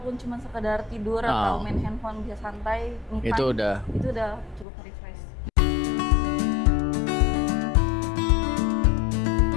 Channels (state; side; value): drops out; right; at 4.7 s